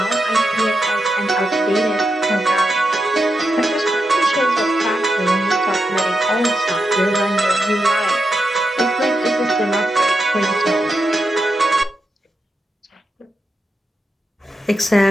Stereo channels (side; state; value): both; normal; correlation 0.86